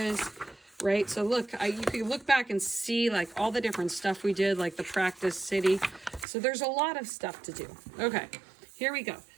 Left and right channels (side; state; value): left; drops out; at 6.2 s